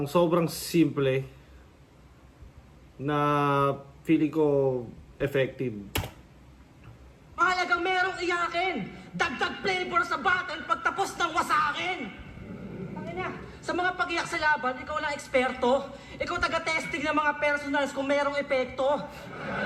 sobrang simple na feeling ko effective. Mahalagang merong iyakin. Dagdag flavor sa battle pagtapos ng wasakin. Tangina, sa mga pag-iyak sa laban, ikaw lang eksperto. Ikaw taga-testing ng mga personals kung merong epekto.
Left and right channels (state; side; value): identical; both; correlation 1.00